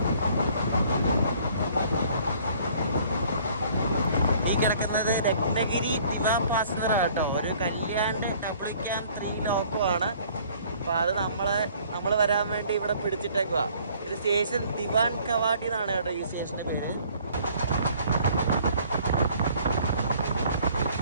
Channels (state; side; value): inverted; both; correlation -0.57